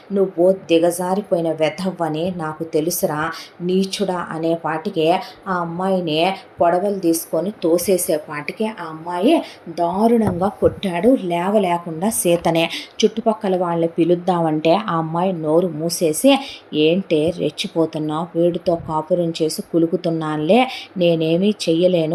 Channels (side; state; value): both; identical; correlation 1.00